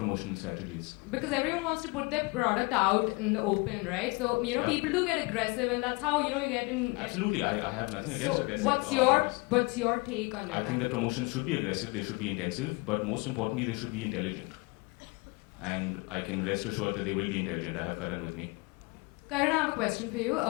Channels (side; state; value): right; quieter; 27.5 dB